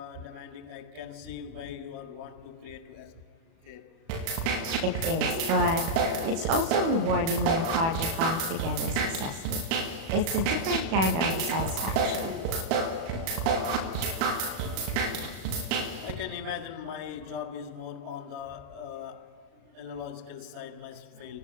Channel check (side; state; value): left; late; 37 ms